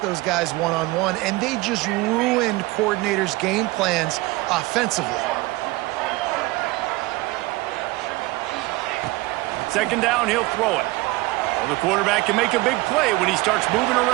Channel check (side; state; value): left; quieter; 21.1 dB